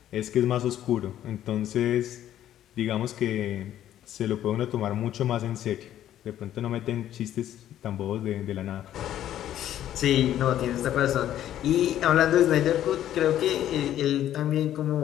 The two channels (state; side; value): quieter; right; 11.7 dB